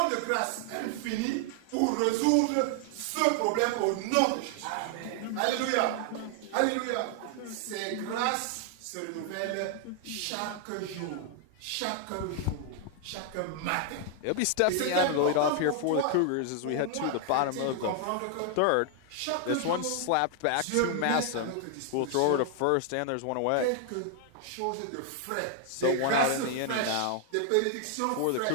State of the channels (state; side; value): different; both; correlation 0.00